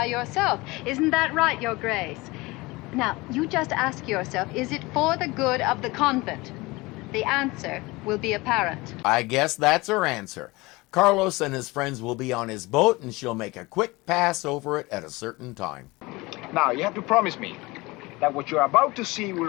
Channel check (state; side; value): quieter; right; 22.6 dB